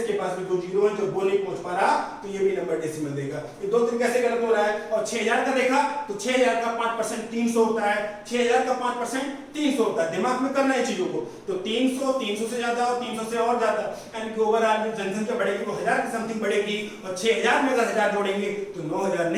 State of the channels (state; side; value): identical; both; correlation 1.00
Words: पास भी 2 जीरो हैं, जो वो नहीं पहुंच पा रहा तो ये भी नंबर डेसिमल देगा। ये दो तरीके से गलत हो रहा है। और 6000 का देखा तो 6000 का 5% 300 होता है, 6000 का 5% 300 होता है। दिमाग में करना है चीजों को, तो 300 300 से ज्यादा और 300 से और ज्यादा, यानी कि ओवरऑल जो जनसंख्या बढ़ेगी वो 1000 की समथिंग बढ़ेगी, और 6000 में अगर 1000 जोड़ेंगे तो 9000